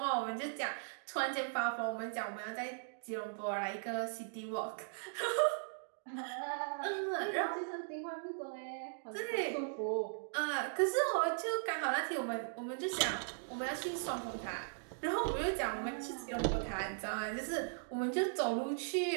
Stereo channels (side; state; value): left; silent; digital silence